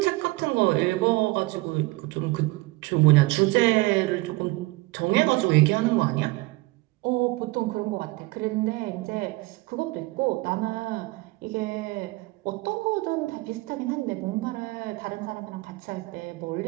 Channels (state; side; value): quieter; left; 22.3 dB